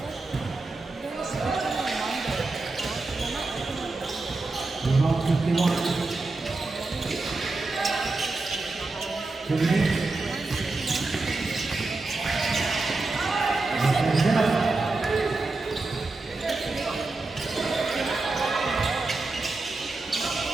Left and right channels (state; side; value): quieter; left; 3.4 dB